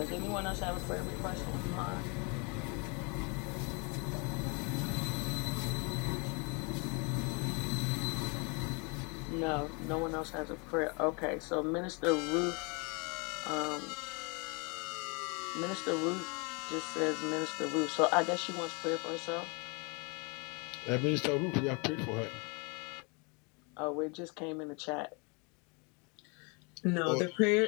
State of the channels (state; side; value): quieter; right; 32.3 dB